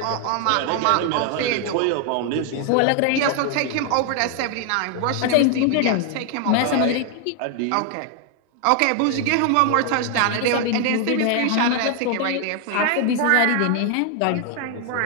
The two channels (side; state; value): both; different; correlation 0.00